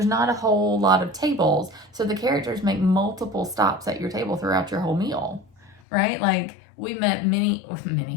not a whole lot of tables. So the characters make multiple stops at your table throughout your whole meal. Right? Like, we met Mickey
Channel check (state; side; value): drops out; right; at 5.8 s